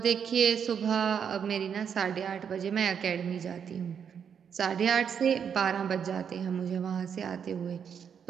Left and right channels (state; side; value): quieter; left; 7.5 dB